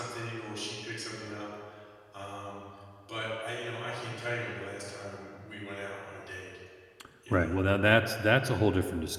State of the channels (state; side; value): identical; both; correlation 1.00